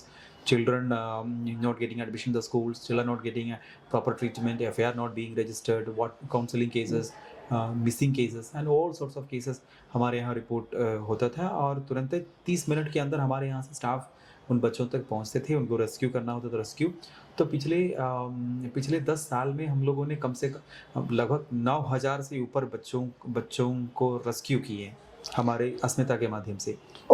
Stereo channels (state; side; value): identical; both; correlation 1.00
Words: children not getting admission in the schools, children not getting proper treatment, FIR not being registered, what counseling cases, missing cases and all sorts of cases हमारे यहाँ report होता था। और तुरंत 30 minute के अंदर हमारे यहाँ से स्टाफ उन बच्चों तक पहुँचते थे, उनको रेस्क्यू करना होता था। रेस्क्यू तो पिछले 10 साल में हम लोगों ने कम से कम लगभग 9000 से ऊपर बच्चों को रेस्क्यू किए हमारे अस्मिता के माध्यम से।